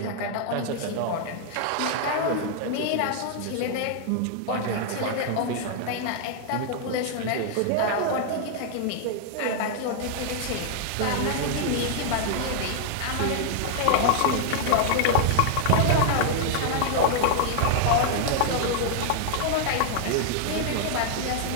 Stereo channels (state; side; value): different; both; correlation -0.01